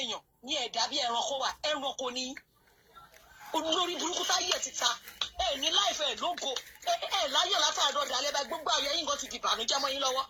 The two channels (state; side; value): identical; both; correlation 1.00